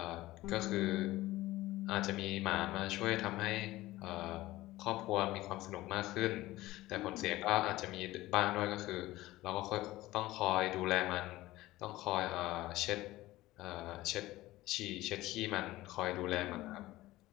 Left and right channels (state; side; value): quieter; right; 17.4 dB